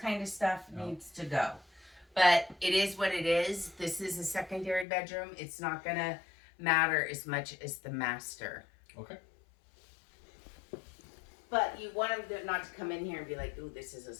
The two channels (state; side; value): drops out; right; at 4.9 s